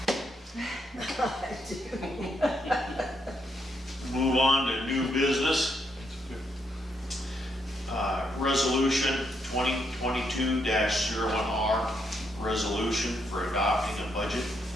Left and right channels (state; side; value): normal; both; correlation 0.77